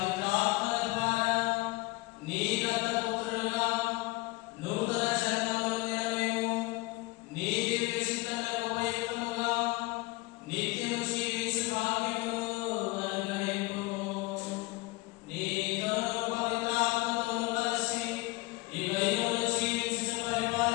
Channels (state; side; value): quieter; right; 22.5 dB